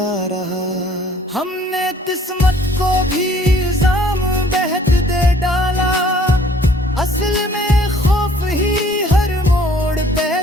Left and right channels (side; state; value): both; normal; correlation 0.57